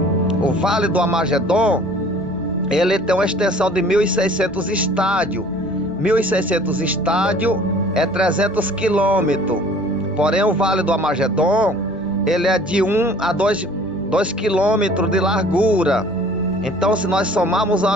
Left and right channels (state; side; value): normal; both; correlation 0.51